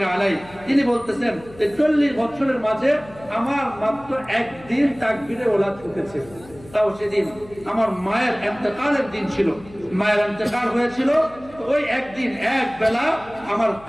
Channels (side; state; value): left; noise; hum, 21 dB below the sound